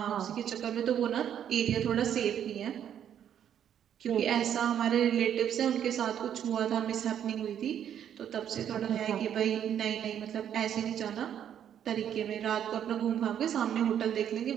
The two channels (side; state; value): left; quieter; 9.5 dB